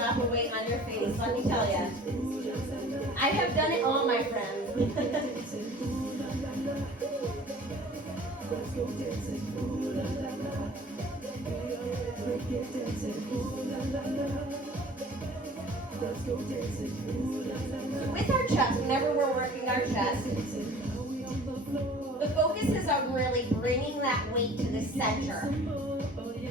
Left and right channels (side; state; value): both; normal; correlation 0.47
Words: a weight on your face, let me tell you. I have done it all, my friends. With our chest, whenever we're working our chest, the focus is on really bringing that weight to the center.